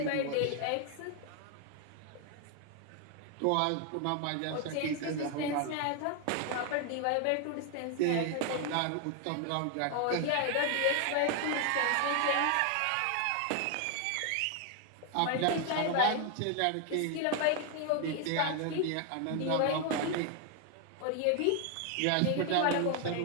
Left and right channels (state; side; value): different; both; correlation 0.00